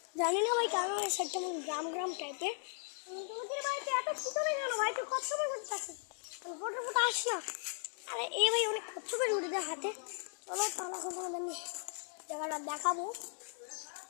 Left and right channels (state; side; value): silent; right; 53 dB below the other